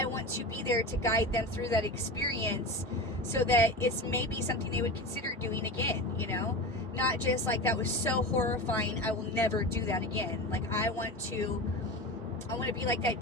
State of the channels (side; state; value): both; normal; correlation 0.27